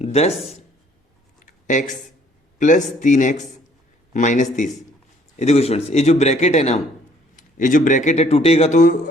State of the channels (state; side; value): normal; both; correlation 0.61